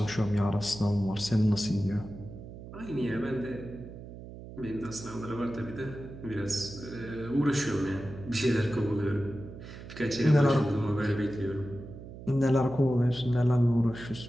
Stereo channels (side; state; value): right; noise; hum, 13 dB below the sound